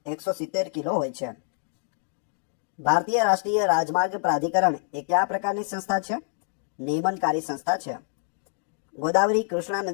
170 કિલો હોય છે. ભારતીય રાષ્ટ્રીય રાજમાર્ગ પ્રાધિકરણ એ કયા પ્રકારની સંસ્થા છે? નિયમનકારી સંસ્થા છે. ગોદાવરી કૃષ્ણા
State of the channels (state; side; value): silent; right; digital silence